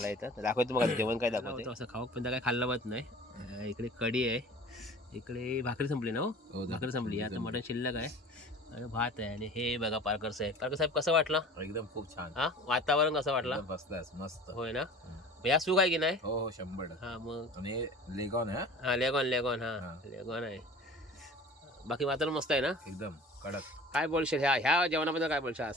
आहे. तर दाखवतो मग जेवण काय दाखवतो. असं खाऊ पण काय खाल्लं होत नाही. इकडे कढी आहे, इकडे भाकरी संपली ना. हो भाकरी संपली, आता मटण शिल्लक आहे आणि भात आहे. आणि हे बघा पारकर साहेब कसं वाटलं? एकदम खूप छान. हा वातावरण कसं वाटलं? मस्त. होय ना. या सुख आहे की नाही? हो 100%. हा मग आणि लेगॉन आहे. हा लेगॉन हा लेगॉन आहे. बाकी वातावरण मस्त आहे ना, एकदम कडक. काय बोलशील ह्या जेवणाबद्दल? काय बोलशील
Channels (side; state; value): both; normal; correlation 0.42